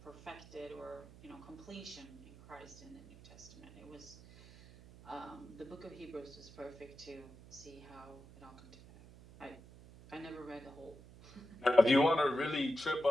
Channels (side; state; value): right; noise; hum, 19 dB below the sound